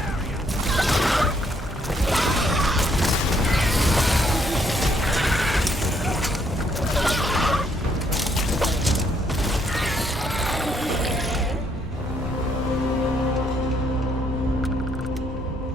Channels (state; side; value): normal; both; correlation 0.71